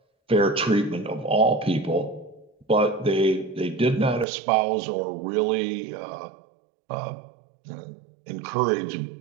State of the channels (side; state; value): left; drops out; at 4.2 s